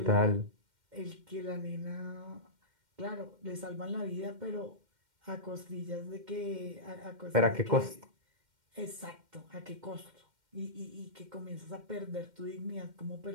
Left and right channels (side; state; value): left; late; 2.1 ms